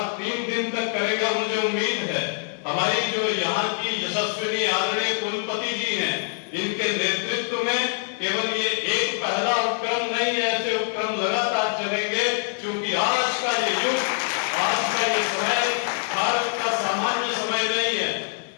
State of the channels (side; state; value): right; silent; 57 dB below the other